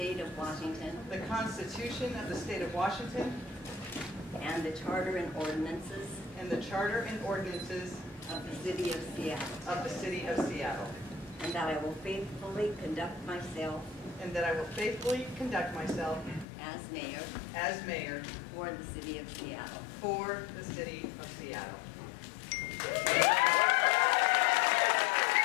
of Washington. The Constitution of the State of Washington. And the Charter and ordinances. And the Charter and ordinances of the City of Seattle. And that I will faithfully conduct myself. As mayor. For the City of Seattle.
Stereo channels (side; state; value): right; drops out; at 16.4 s